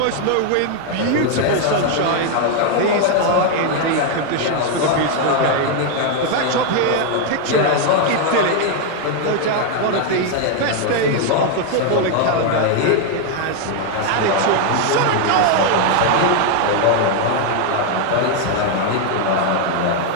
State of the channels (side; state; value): both; different; correlation 0.00